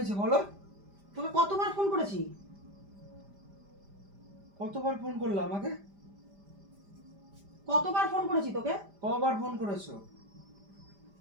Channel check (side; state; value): left; late; 5.0 ms